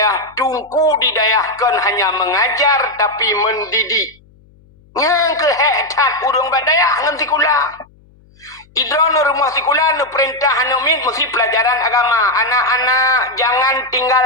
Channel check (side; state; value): left; noise; hum, 29 dB below the sound